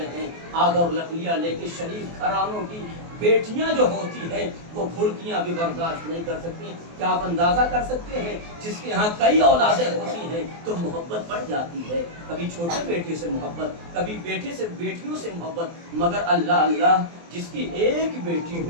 ہیں آگ اور لکڑیاں لے کے. شریف گھرانوں کی بیٹیاں جو ہوتی ہیں وہ گھڑکیاں بھی برداشت نہیں کر سکتی. کیا آپ اندازہ کر سکتے ہیں جس کے ہاں کئی اولادیں ہوتی ہیں تو محبت بڑھ جاتی ہے, کبھی چھوٹے بیٹے سے محبت, کبھی بیٹے سے بیٹیوں سے محبت, مگر اللہ اللہ جس کی ایک بیٹی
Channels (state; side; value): late; left; 24 ms